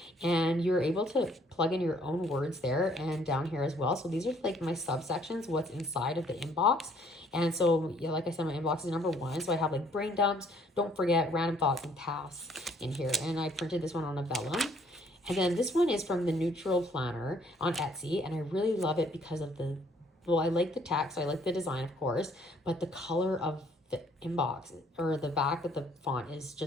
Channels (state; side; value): normal; both; correlation 0.62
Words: and you're able to plug in your own words there and down here as well. So these are like my subsections, what's inside of the inbox. And so, yeah, like I said, my inbox is number 1. So I have like brain dumps, don't forget, random thoughts, and tasks in here. And I printed this one on a vellum. And then this one is from the Neutral Planner on Etsy, and I really love it because of I like the text, I like the design, of course, but the color of the inbox or the back of the font is